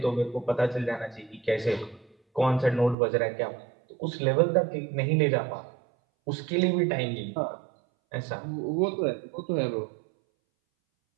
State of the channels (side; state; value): left; drops out; at 3.0 s